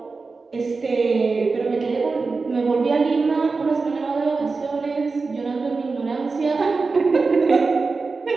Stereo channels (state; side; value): quieter; left; 4.2 dB